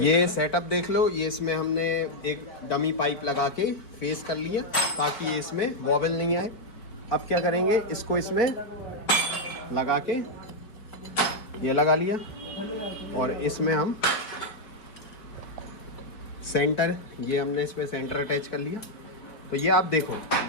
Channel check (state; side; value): late; right; 4.5 ms